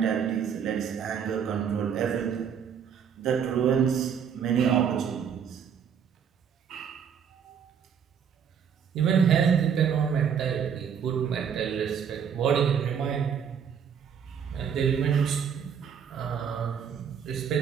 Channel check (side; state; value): left; quieter; 7.6 dB